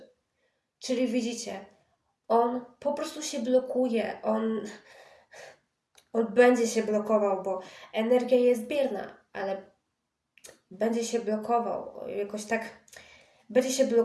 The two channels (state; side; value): identical; both; correlation 1.00